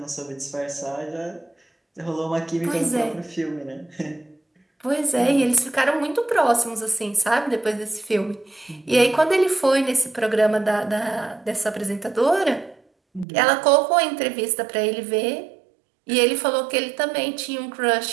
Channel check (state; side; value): drops out; left; at 13.2 s